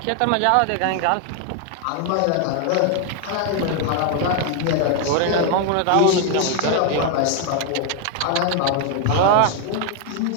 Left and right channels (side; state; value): both; different; correlation 0.00